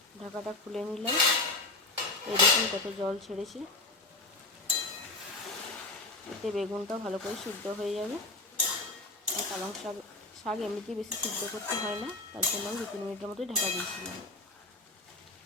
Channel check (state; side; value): quieter; right; 3.1 dB